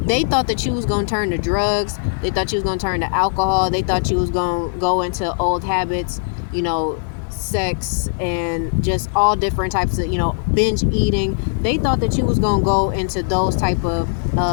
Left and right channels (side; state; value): right; silent; digital silence